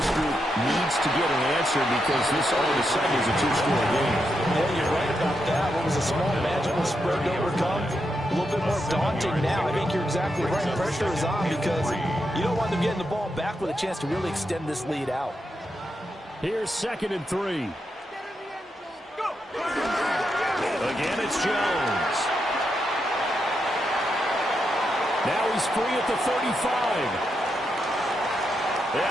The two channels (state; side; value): normal; both; correlation 0.84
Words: group needs to get an answer because this all of a sudden is a 2-score game. Yeah, you're right about that. What was a small magical spread to overcome? A little bit more daunting now. I think you're exactly right. Pressure is on because you don't want them getting the ball back with a chance to really extend this lead out. Here's 2nd and 3. Again, it's Jones. Now he's free at the 35.